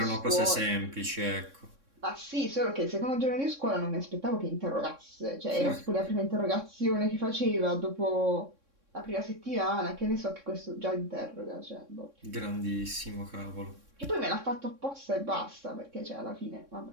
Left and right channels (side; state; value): left; late; 3.6 ms